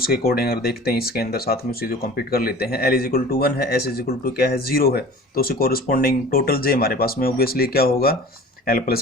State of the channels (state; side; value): normal; both; correlation 0.42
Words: के अकॉर्डिंग अगर देखते हैं, इसके अंदर साथ में उसे जो कंप्लीट कर लेते हैं, एल इज इक्वल टू 1 है, एस इज इक्वल टू क्या है 0 है, तो उसे कोरस्पोंडिंग टोटल जे हमारे पास में ऑब्वियसली क्या होगा, एल